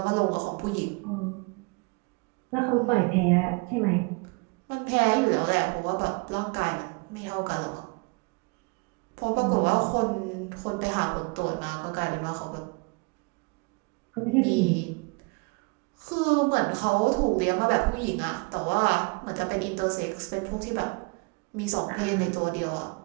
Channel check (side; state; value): left; quieter; 30.0 dB